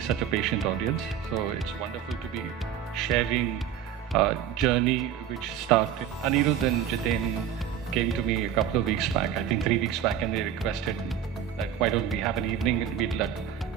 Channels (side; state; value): left; quieter; 9.3 dB